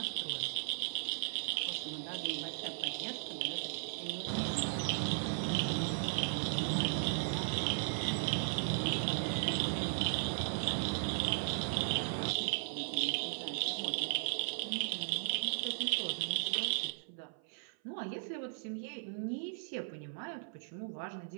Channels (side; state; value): left; silent; 53 dB below the other